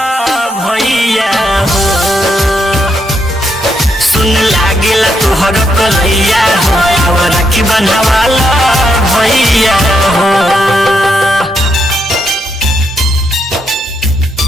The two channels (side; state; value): both; normal; correlation 0.78